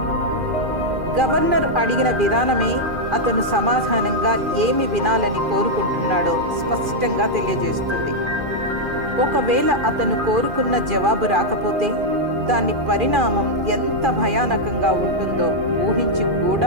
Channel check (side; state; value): left; late; 2.4 ms